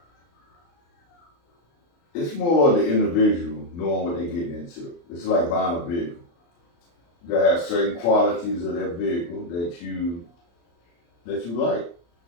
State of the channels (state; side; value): late; right; 35 ms